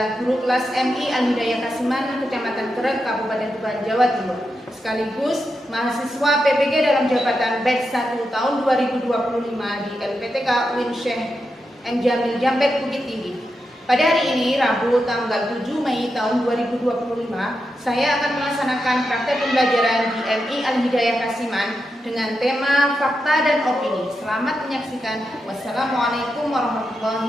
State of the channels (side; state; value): both; normal; correlation 0.87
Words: guru kelas MI Al-Hidayah Kasiman, Kecamatan Kerek, Kabupaten Tuban, Jawa Timur. Sekaligus mahasiswa PPG dalam jabatan batch 1 tahun 2025 di LPTK UIN Syekh M. Jamil Jambet, Bukit Tinggi. Pada hari ini, Rabu tanggal 7 Mei tahun 2025, saya akan melaksanakan praktek pembelajaran di MI Al-Hidayah Kasiman dengan tema fakta dan opini. Selamat menyaksikan. Wassalamualaikum